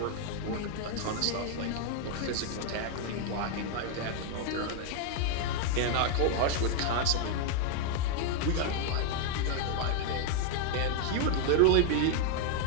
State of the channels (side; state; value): both; different; correlation 0.00